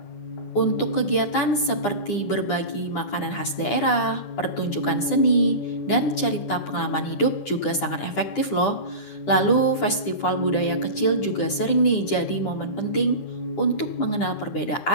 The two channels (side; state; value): right; late; 9.9 ms